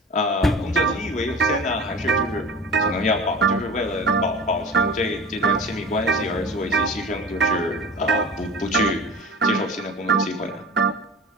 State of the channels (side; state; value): both; normal; correlation 0.36